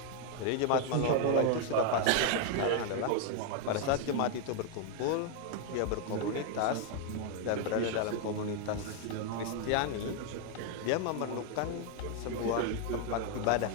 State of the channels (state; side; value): different; both; correlation 0.00